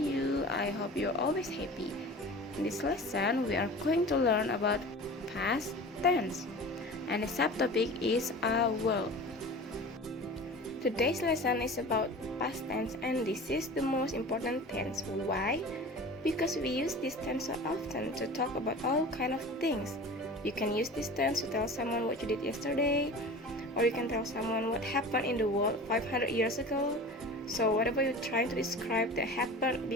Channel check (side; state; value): both; normal; correlation 0.37